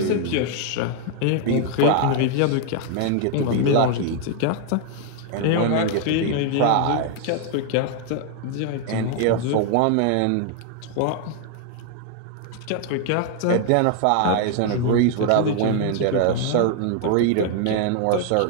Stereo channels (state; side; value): different; both; correlation 0.00